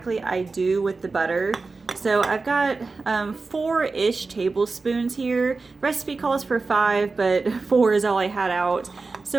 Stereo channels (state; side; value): quieter; left; 4.0 dB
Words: I do with the butter. So I've got 4-ish tablespoons here. Recipe calls for 5, but 4 is all I had out.